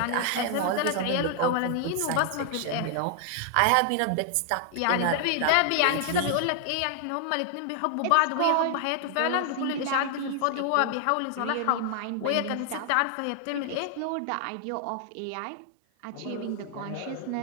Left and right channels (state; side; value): different; both; correlation 0.00